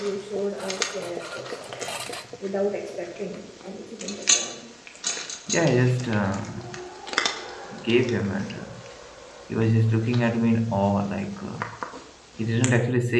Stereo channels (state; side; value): identical; both; correlation 1.00